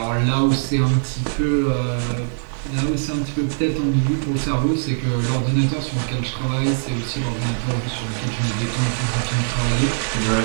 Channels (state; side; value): silent; left; digital silence